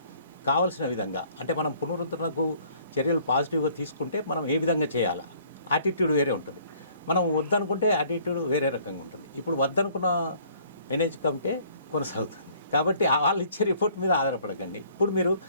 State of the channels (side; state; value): both; inverted; correlation -0.59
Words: కావాల్సిన విధంగా, అంటే మనం పునరుద్ధరణకు చర్యలు పాజిటివ్గా తీసుకుంటే మనం ఏ విధంగా చేయాలా, యాటిట్యూడ్ వేరే ఉంటుంది. మనం వద్దనుకుంటే యాటిట్యూడ్ వేరే రకంగా ఉంటుంది. ఇప్పుడు వద్దనుకున్న మేనేజ్ కమిటీ కొనసాగుతుంది. కాబట్టి వాళ్ళు ఇచ్చే రిపోర్ట్ మీద ఆధారపడకండి. ఇప్పుడు మీరు